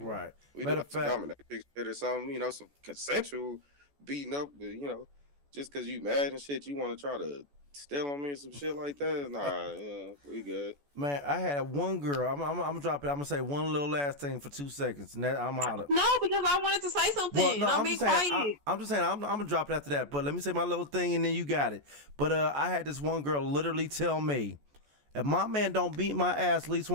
Right. We do have to dominate shit or something, you know, some consensual beating up, but, you know, just because you mad and shit, you want to try to steal on me or some shit like that. Nah, we good. Man, I had one girl. I'm gonna drop it. I'm gonna say one little last thing for 2 seconds, and then I'm out of. No, because I wanted to say something. Well, no, I'm being quiet. I'm just saying I'm gonna drop it after that. But let me say my little thing, and then you got it. But I had this one girl literally tell me, if my man don't beat my ass at least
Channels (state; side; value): late; left; 14 ms